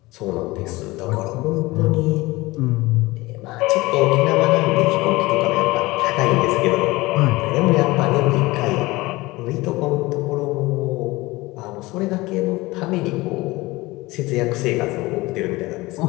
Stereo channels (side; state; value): right; quieter; 21.0 dB